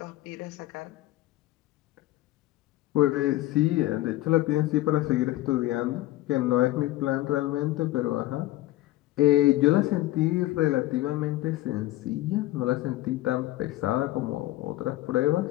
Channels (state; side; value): quieter; right; 16.6 dB